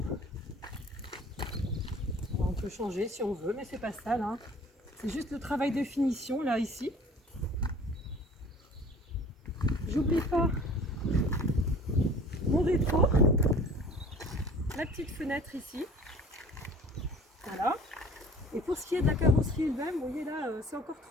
On peut changer si on veut, mais c'est pas sale, hein. C'est juste le travail de finition là ici. J'oublie pas mon rétro, la petite fenêtre ici. Voilà. Et pour ce qui est de la carrosserie elle-même, vous voyez là, c'est encore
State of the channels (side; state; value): both; normal; correlation 0.47